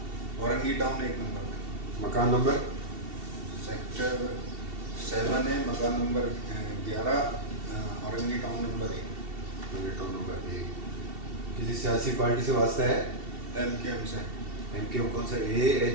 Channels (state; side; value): late; left; 2.7 ms